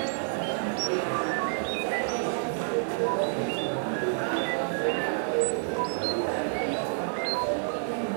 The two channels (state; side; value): silent; left; 59 dB below the other